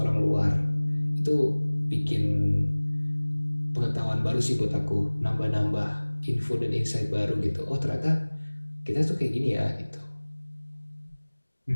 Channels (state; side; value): inverted; both; correlation -1.00